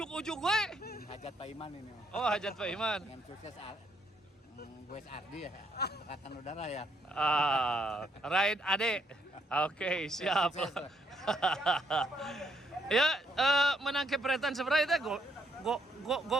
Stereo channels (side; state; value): both; normal; correlation 0.71